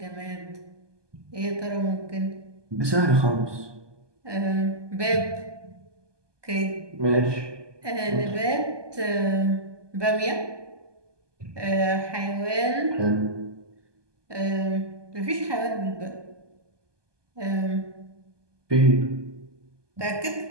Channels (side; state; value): left; late; 1.2 ms